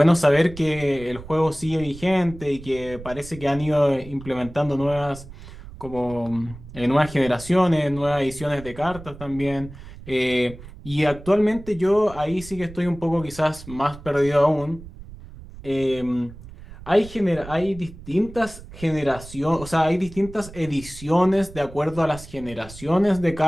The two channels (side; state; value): right; noise; rumble, 16 dB below the sound